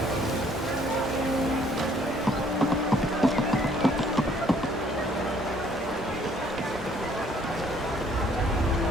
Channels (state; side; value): normal; both; correlation 0.62